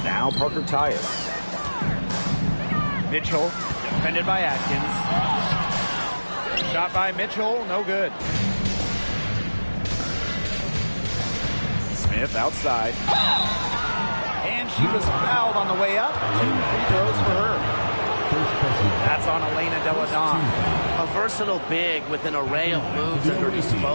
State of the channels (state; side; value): inverted; both; correlation -1.00